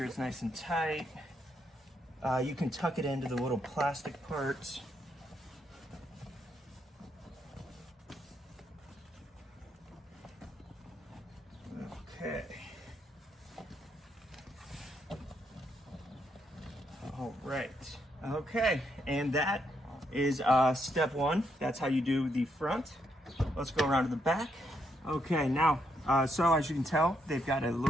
it's nice and tight. You can tuck it into the little plastic parts. Okay. All right. Okay, and that is step one. That's how you do the front. Let's go around to the back. Okay, now, so as you can tell, they've got a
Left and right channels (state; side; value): normal; both; correlation 0.77